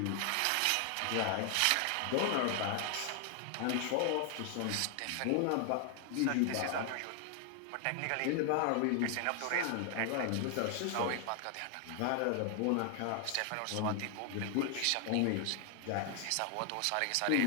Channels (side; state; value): both; different; correlation 0.00